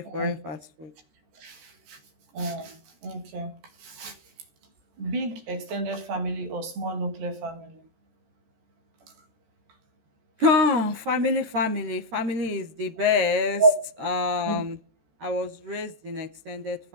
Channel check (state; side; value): late; left; 13 ms